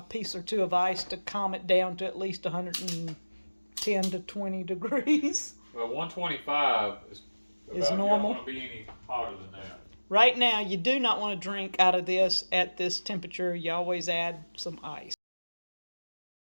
piece or two of ice to calm it down to at least 110 to 20 degrees. Well, 125 is normal. You don't want to be any hotter than that. Right now, you do not want to drink out of this at this temperature. You always add some ice.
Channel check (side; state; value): both; inverted; correlation -1.00